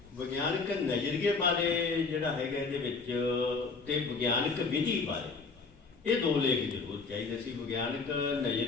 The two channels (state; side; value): quieter; right; 4.5 dB